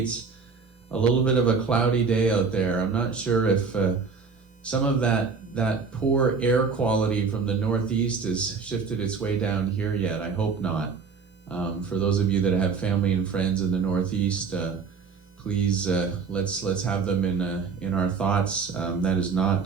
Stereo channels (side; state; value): left; quieter; 5.2 dB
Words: A little bit of a cloudy day out there. I'm not sure if some of that poor air quality from the northeast has shifted its way down here yet. I hope not. For those of you that have family and friends in the northeast, please let's have them in our thoughts. That is